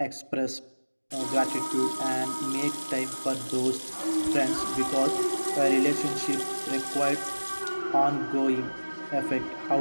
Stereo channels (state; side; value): inverted; both; correlation -1.00